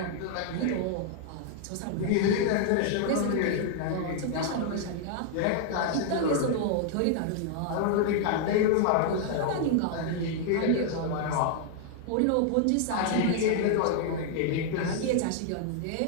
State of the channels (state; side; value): different; both; correlation 0.00